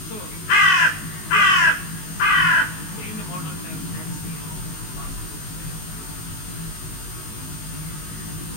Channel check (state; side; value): late; right; 19 ms